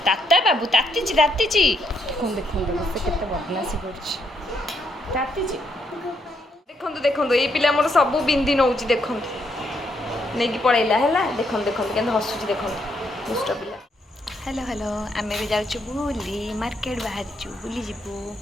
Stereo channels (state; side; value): normal; both; correlation 0.75